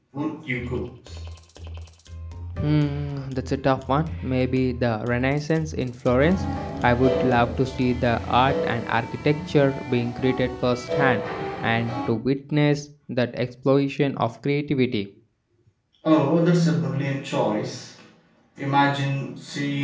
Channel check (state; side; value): identical; both; correlation 1.00